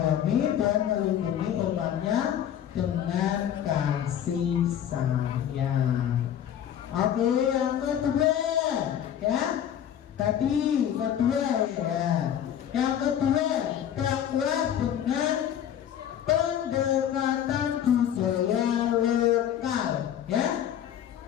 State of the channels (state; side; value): quieter; right; 10.0 dB